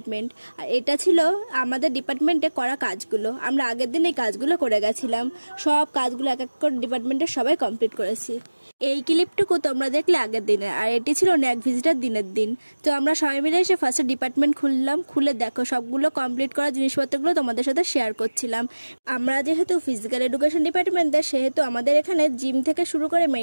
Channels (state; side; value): inverted; both; correlation -1.00